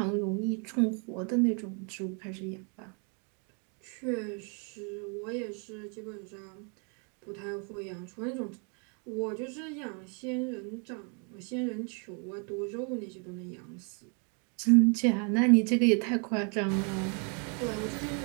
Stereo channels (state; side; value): quieter; left; 37.7 dB